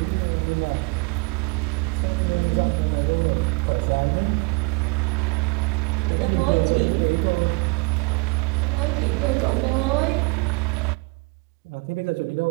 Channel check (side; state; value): left; quieter; 28.3 dB